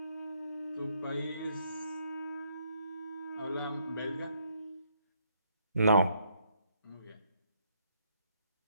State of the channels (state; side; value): inverted; both; correlation -0.71